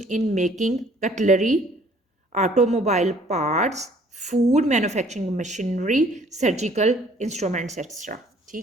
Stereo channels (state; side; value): normal; both; correlation 0.58